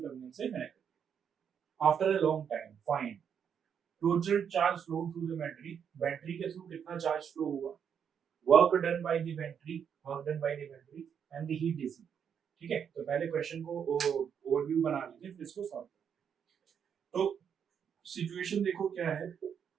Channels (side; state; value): left; quieter; 7.8 dB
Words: टर्मिनल से कनेक्ट करते हैं। After a long time find total charge flow through the battery, battery के through कितना चार्ज फ्लो हुआ, work done by the battery, and the heat dissipated, ठीक है। तो पहले क्वेश्चन को ओवरव्यू बना लीजिए, फिर इसको सॉल्व करें। तो सिचुएशन देखो क्या है,